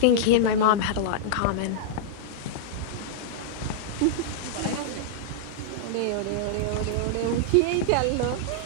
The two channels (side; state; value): both; different; correlation -0.02